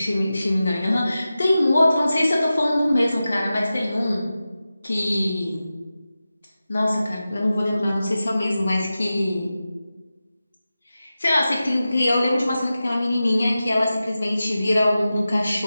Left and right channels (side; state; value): both; inverted; correlation -0.94